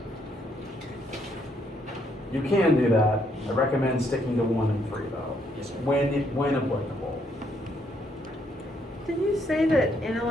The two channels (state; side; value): normal; both; correlation 0.72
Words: You can do that. I recommend sticking to 1 and 3 though, Yes, sir. when applicable. Did you say that